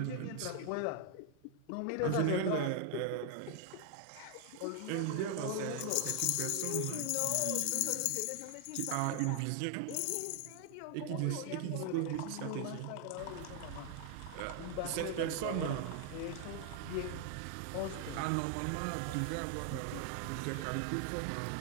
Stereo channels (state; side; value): different; both; correlation 0.00